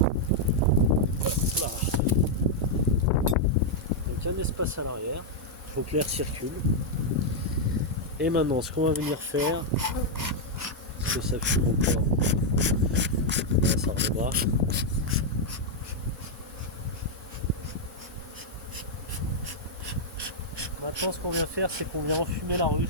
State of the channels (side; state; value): both; normal; correlation -0.03